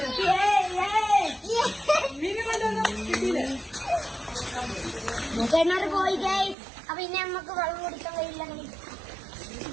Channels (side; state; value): left; drops out; at 6.6 s